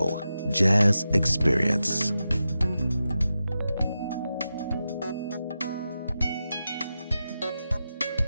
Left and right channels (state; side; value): inverted; both; correlation -0.90